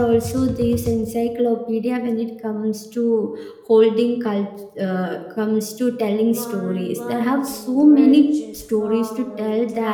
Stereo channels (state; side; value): identical; both; correlation 1.00